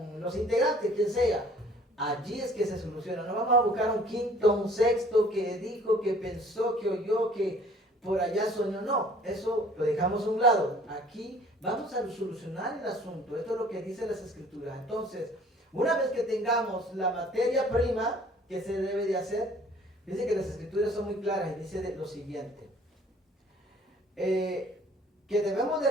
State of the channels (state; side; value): normal; both; correlation 0.54